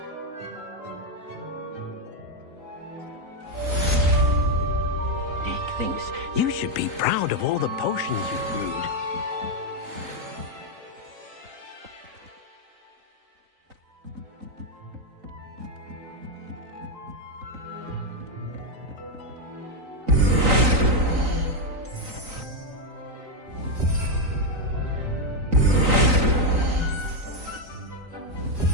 Dick thinks you should be proud of all the potions you've brewed.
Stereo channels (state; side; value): late; left; 3.9 ms